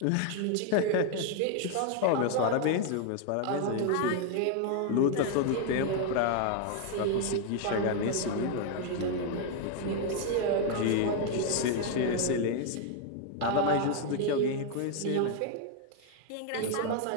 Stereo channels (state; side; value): different; both; correlation 0.00